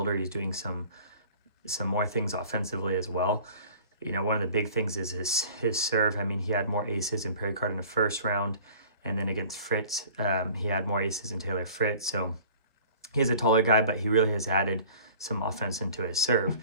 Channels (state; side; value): inverted; both; correlation -0.47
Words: he's doing some more things offensively as well. You know, one of the big things is his serve. I mean, he had more aces in Perry-Card in the first round, and then against Fritz, he had more aces in Taylor Fritz. So he's a taller guy, but he really has added some offense into his serve.